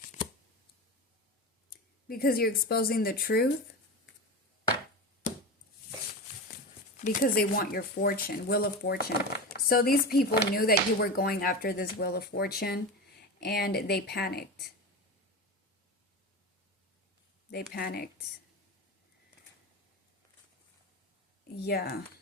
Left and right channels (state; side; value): normal; both; correlation 0.24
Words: Because you're exposing the truth. Because they want your fortune, Wheel of Fortune. So these people knew that you were going after this Wheel of Fortune, and they panicked. They panicked. Yeah.